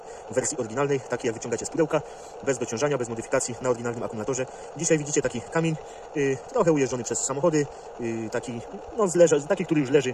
w wersji oryginalnej, takiej jak wyciągacie z pudełka, bez dociążania, bez modyfikacji, na oryginalnym akumulatorze. Dzisiaj widzicie taki kamień, trochę ujeżdżony przez samochody, taki, no, taki, który już leży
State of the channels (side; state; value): both; identical; correlation 1.00